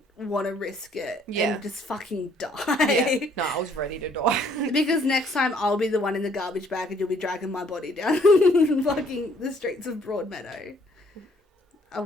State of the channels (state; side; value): normal; both; correlation 0.63